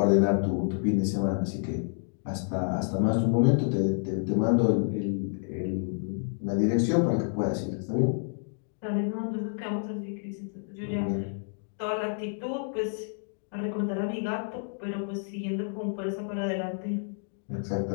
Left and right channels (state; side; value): silent; right; digital silence